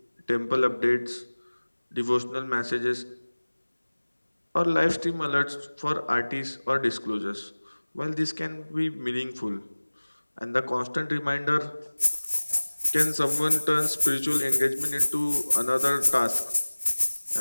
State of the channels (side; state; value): both; inverted; correlation -1.00